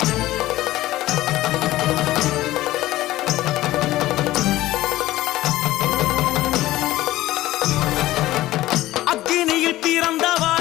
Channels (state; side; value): quieter; right; 16.2 dB